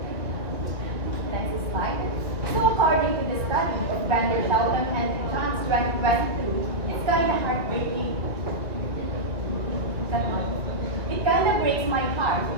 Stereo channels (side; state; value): left; late; 1.2 ms